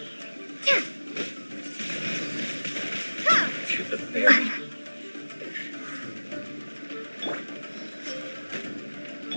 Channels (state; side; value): inverted; both; correlation -1.00